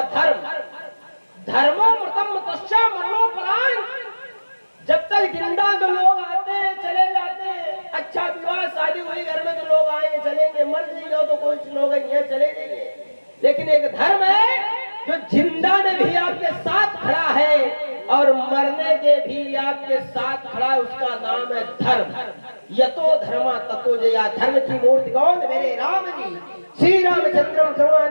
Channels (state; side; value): inverted; both; correlation -1.00